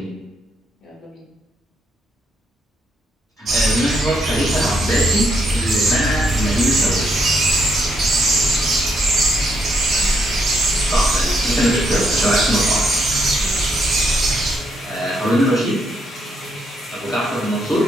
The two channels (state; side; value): normal; both; correlation 0.74